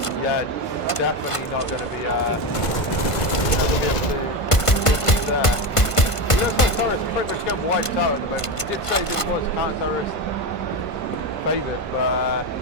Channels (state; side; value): late; right; 1.5 ms